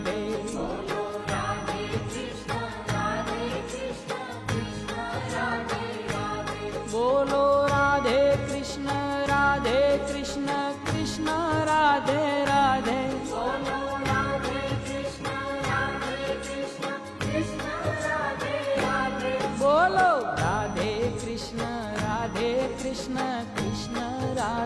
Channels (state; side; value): identical; both; correlation 1.00